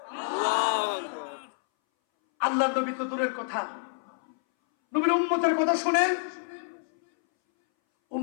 আল্লাহু আকবার। আল্লাহ নবী তো দূরের কথা, নবীর উম্মতের কথা শুনেন।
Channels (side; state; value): right; silent; 59 dB below the other